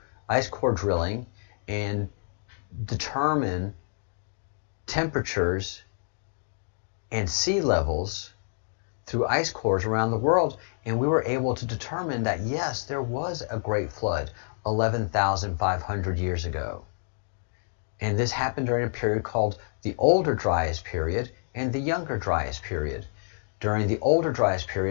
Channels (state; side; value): silent; right; digital silence